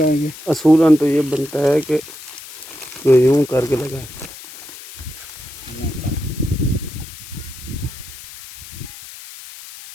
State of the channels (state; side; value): noise; left; hiss, 15 dB below the sound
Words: असूलन तो ये बनता है कि यूं करके लगाए।